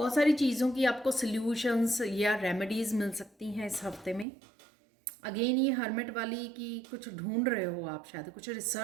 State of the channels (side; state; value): left; drops out; at 4.2 s